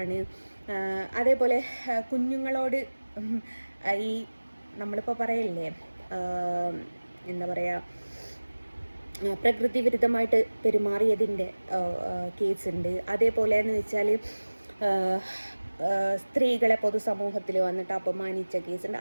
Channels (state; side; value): inverted; both; correlation -1.00